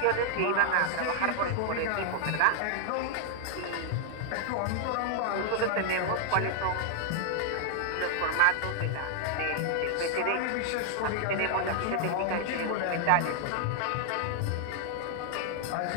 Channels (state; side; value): different; both; correlation -0.01